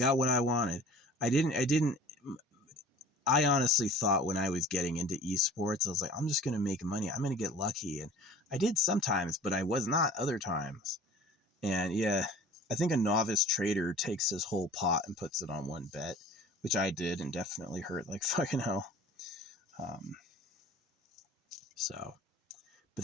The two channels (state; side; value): normal; both; correlation 0.45